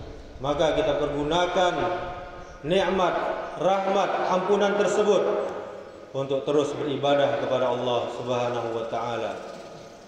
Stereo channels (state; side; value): identical; both; correlation 1.00